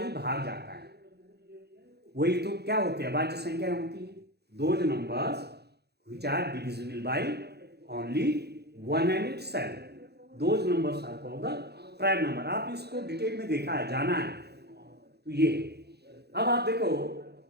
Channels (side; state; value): left; late; 0.48 ms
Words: भाग जाता है वही तो क्या होते हैं, अभाज्य संख्या होती है। Those numbers which are divisible by only 1 and itself, those numbers are called the prime number। आप इसको डिटेल में देखा है, जाना है तो ये। अब आप देखो